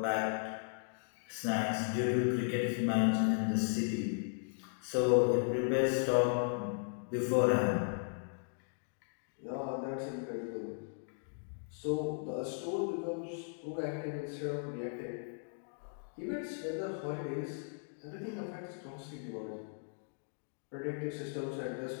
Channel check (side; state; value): right; silent; digital silence